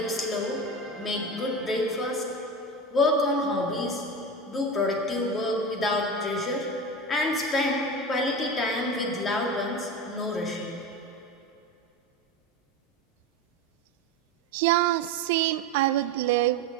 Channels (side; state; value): both; normal; correlation 0.24